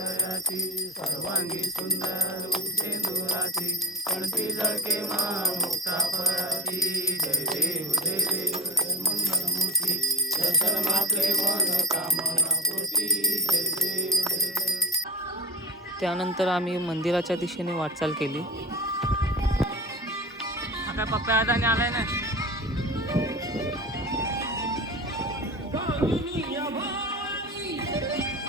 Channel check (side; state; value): both; normal; correlation 0.26